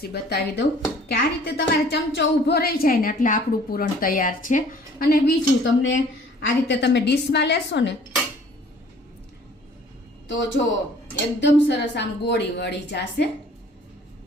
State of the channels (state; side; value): normal; both; correlation 0.53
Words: બતાવી દઉં કે આ રીતે તમારે ચમચો ઊભો રહી જાય ને એટલે આપણું પૂરણ તૈયાર છે. અને બીજું તમને આ રીતે તમે ડીશમાં લેશો ને તો જો એકદમ સરસ આમ ગોળી વળી જશે